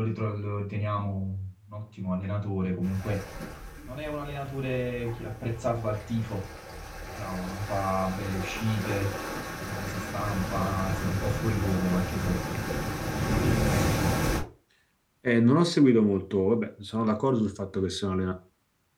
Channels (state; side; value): identical; both; correlation 1.00